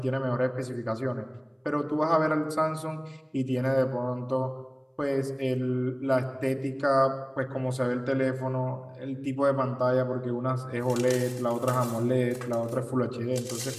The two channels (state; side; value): identical; both; correlation 1.00